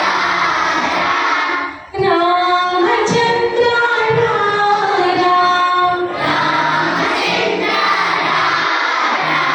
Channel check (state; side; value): identical; both; correlation 1.00